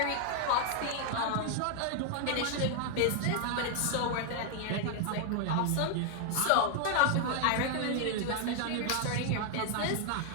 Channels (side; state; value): both; different; correlation 0.00